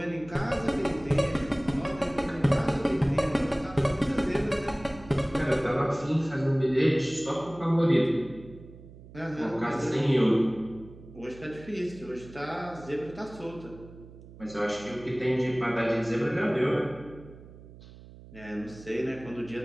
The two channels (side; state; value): right; noise; hum, 19 dB below the sound